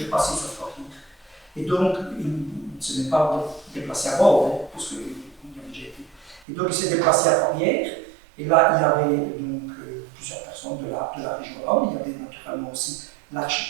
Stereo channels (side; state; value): left; drops out; at 6.4 s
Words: repasser sur Floride. Et donc, il ne se n'est pas déplacé à bord, hein, parce qu'il y avait déjà été. Et donc, il s'est déplacé à Fourvière, et là, il y avait donc plusieurs personnes de la région wallonne. Il y avait naturellement aussi